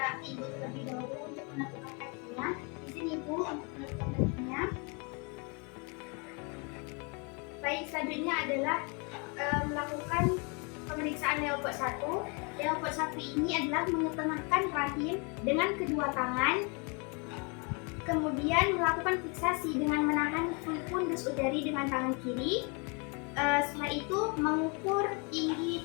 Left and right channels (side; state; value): right; quieter; 33.3 dB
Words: ibu terlebih dahulu untuk menentukan kakinya. Di sini ibu untuk menentukan kakinya. Baik, selanjutnya adalah melakukan pemeriksaan leopard 1. Leopard 1 ini adalah mengetengahkan rahim dengan kedua tangan. Kemudian melakukan fiksasi dengan menahan fundus udari dengan tangan kiri. Setelah itu mengukur tinggi